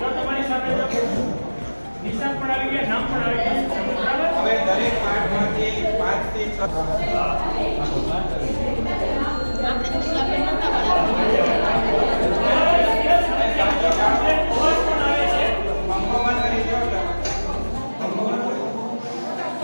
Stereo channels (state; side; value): inverted; both; correlation -1.00